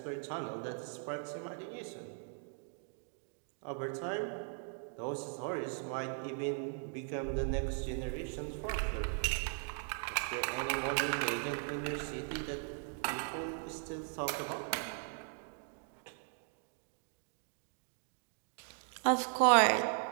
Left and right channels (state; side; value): silent; left; 52 dB below the other